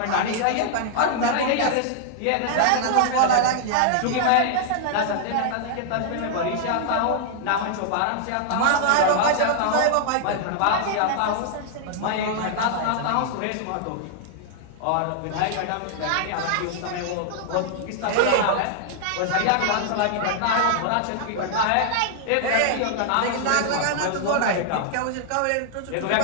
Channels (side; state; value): both; different; correlation -0.01